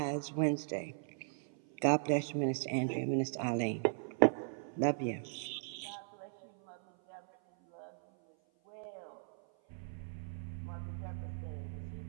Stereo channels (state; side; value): silent; left; 53 dB below the other